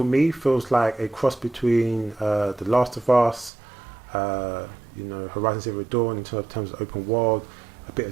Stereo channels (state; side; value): drops out; left; at 3.5 s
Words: me feels like a cross between The Last of Us, Horizon Zero Dawn in terms of open world. A bit